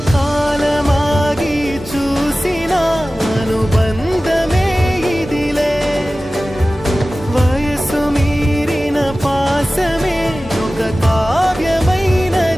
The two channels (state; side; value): normal; both; correlation 0.96